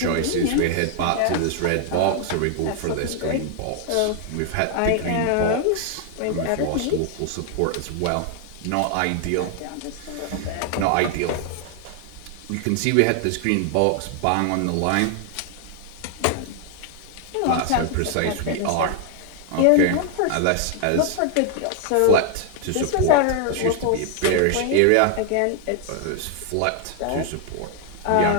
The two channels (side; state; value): both; different; correlation 0.00